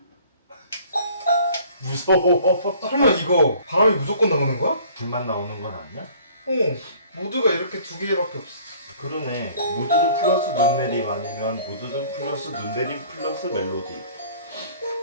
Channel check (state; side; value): inverted; both; correlation -0.53